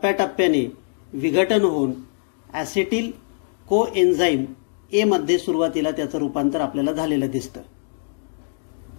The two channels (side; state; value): right; silent; digital silence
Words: विघटन होऊन ॲसेटिल कोएन्झाईम ए मध्ये सुरुवातीला त्याचं रूपांतर आपल्याला झालेलं दिसतं.